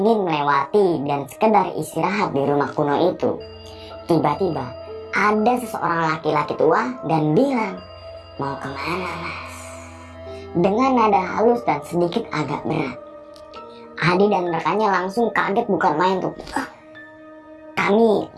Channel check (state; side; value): identical; both; correlation 1.00